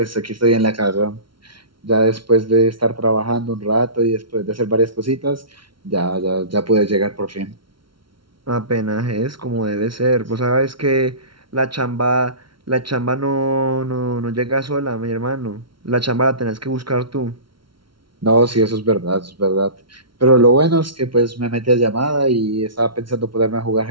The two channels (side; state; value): left; late; 0.74 ms